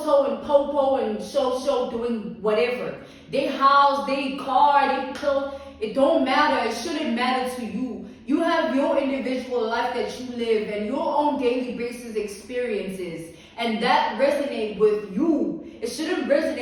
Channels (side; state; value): both; identical; correlation 1.00